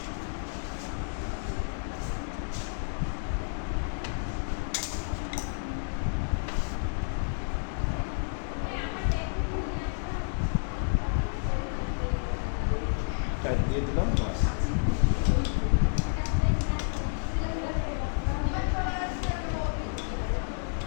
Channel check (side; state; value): right; silent; digital silence